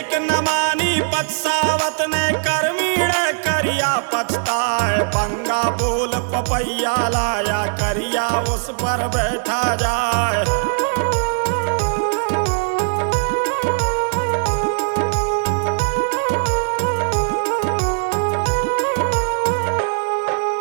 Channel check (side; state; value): left; silent; 66 dB below the other